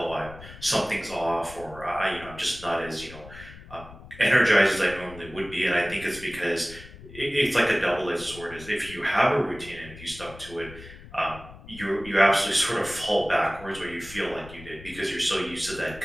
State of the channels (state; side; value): noise; left; rumble, 17 dB below the sound